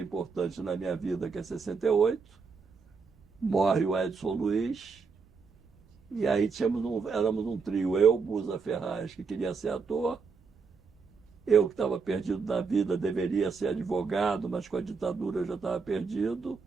na minha vida, que é 68. Morre o Edson Luiz. E aí éramos um trio, eu, Busa Ferraz, que queria ser ator, eu que estava perdido na vida, deveria ser advogado, mas com a ditadura eu já estava perdido,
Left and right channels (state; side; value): quieter; left; 5.1 dB